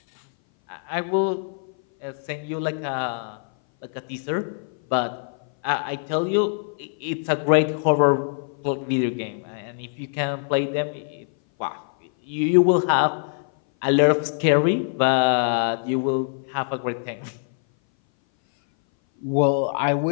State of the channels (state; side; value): silent; right; 59 dB below the other